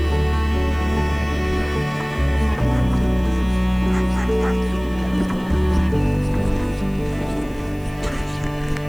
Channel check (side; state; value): right; noise; hiss, 26 dB below the sound